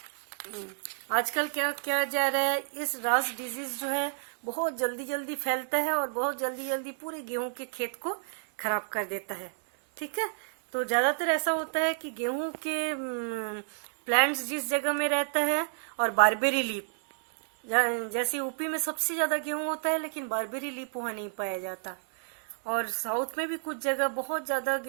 आजकल क्या किया जा रहा है, इस रास डिजीज जो है बहुत जल्दी जल्दी फैलता है और बहुत जल्दी जल्दी पूरे गेहूं के खेत को खराब कर देता है, ठीक है। तो ज्यादातर ऐसा होता है कि गेहूं के प्लांट्स जिस जगह में रहता है और बारबेरी लीफ, जैसे यूपी में सबसे ज्यादा गेहूं होता है लेकिन बारबेरी लीफ वहां नहीं पाया जाता, और साउथ में भी कुछ जगह बहुत ज्यादा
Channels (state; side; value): silent; left; 58 dB below the other